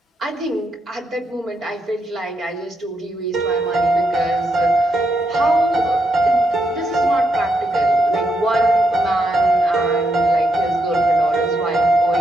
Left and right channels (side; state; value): both; normal; correlation 0.80